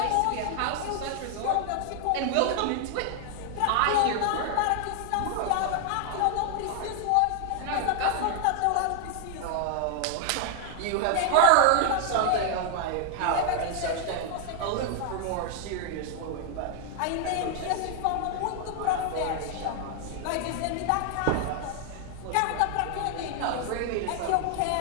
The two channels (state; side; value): different; both; correlation 0.00